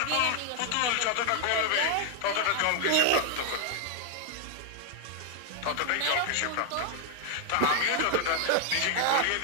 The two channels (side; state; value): both; different; correlation 0.00